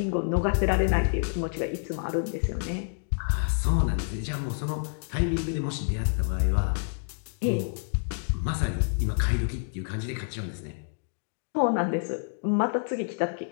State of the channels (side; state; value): right; silent; digital silence